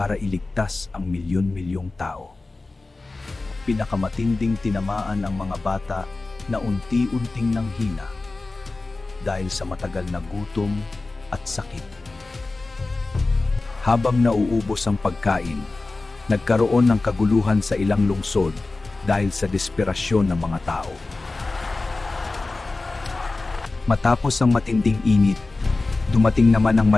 iligtas ang milyon-milyong tao. Pinakamatinding tinamaan ang mga bata na unti-unting nanghina dahil sa matagal na gutom at sakit. Habang nauubos ang pagkain, nagkaroon ng kaguluhan sa ilang lungsod dahil sa desperasyon ng mga tao. Matapos ang matinding init, dumating naman ang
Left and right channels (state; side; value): quieter; right; 3.4 dB